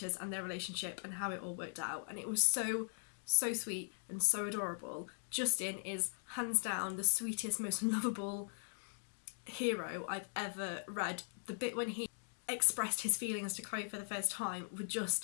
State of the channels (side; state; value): right; silent; digital silence